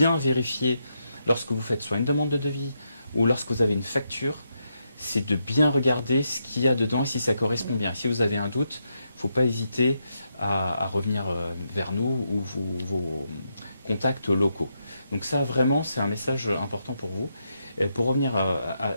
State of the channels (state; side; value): inverted; both; correlation -0.82